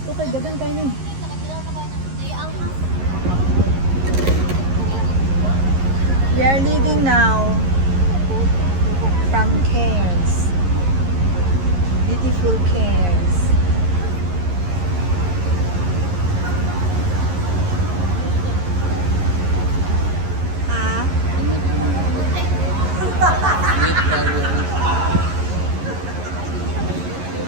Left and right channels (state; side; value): late; left; 11 ms